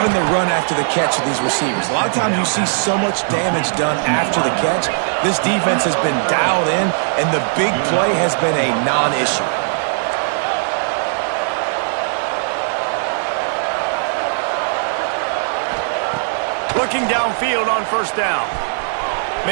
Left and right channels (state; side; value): silent; left; digital silence